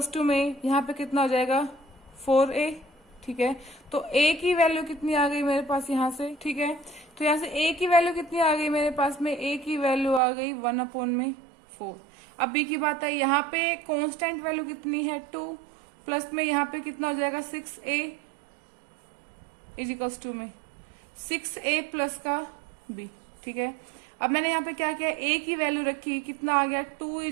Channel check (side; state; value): left; drops out; at 10.2 s